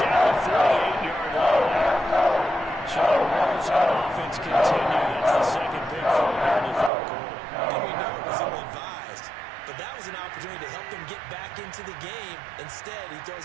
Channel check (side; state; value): left; drops out; at 6.9 s